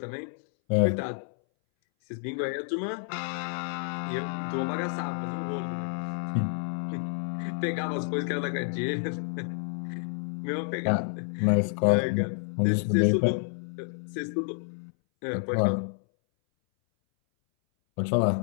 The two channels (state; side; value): silent; right; 58 dB below the other